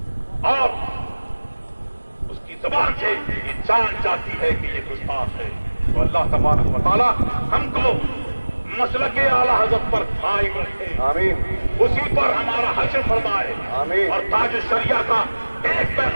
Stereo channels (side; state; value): both; inverted; correlation -1.00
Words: اور اس کی زبان سے یہ جان جاتی ہے کہ یہ گستاخ ہے. تو اللہ تبارک و تعالیٰ ہم کو مسلک اعلیٰ حضرت پر قائم رکھے, آمین. اسی پر ہمارا حشر فرمائے. آمین. اور تاج الشریعہ کا ایک